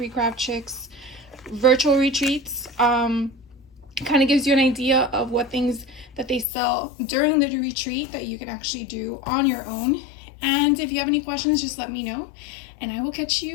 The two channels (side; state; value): right; drops out; at 6.5 s